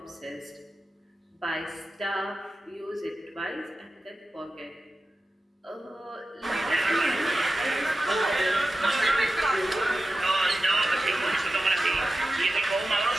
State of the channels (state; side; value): normal; both; correlation 0.93